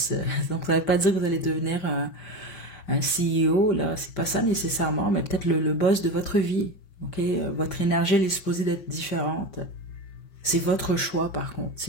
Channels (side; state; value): right; late; 5.6 ms